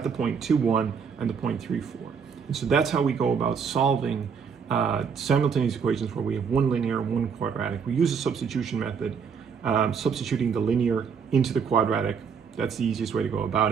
the point 2, 1 and the point 3, 4. And so that's how we go about solving simultaneous equations where we have one linear and one quadratic. We use a substitution method, substituting the linear into the quadratic. That's the easiest way to go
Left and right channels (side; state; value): left; quieter; 6.4 dB